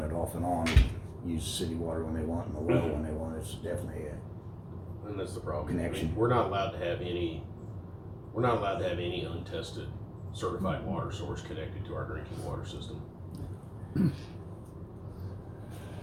it off and on, and use city water when they want, and the well when they want. It's definitely And that's the problem. Connection. We're not allowed to have any untested certified water source connected to our drinking water system.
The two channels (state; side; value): identical; both; correlation 1.00